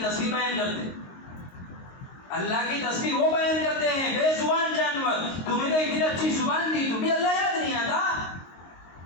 تسبیح بیان کرتے ہیں. اللہ کی تسبیح وہ بیان کرتے ہیں بے زبان جانور. تمہیں تو اتنی اچھی زبان دی، تمہیں اللہ یاد نہیں آتا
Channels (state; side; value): late; right; 22 ms